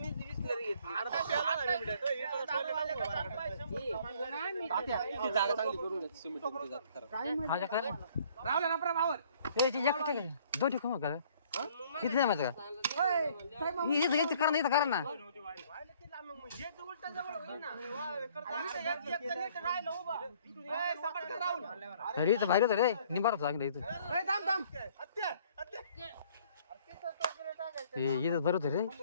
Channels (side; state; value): both; inverted; correlation -0.59